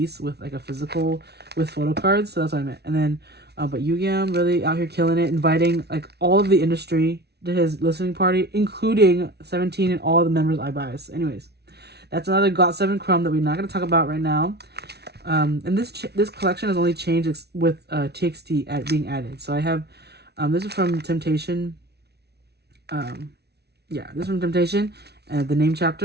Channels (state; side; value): late; left; 0.49 ms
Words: with like a physical with photocards. So that's what I meant. And then, but Yugyeom really out here killing it, inviting like all of the industry to his listening party, including 17 and all the members I bias. Anyways, that's another got7 crumb that we're not going to talk about right now. And this collection has only changed with TXT being added. So I have this is from Temptation. Yeah, this is from Temptation. The name